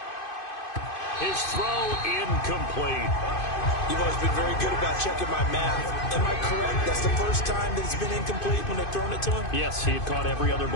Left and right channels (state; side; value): late; right; 2.5 ms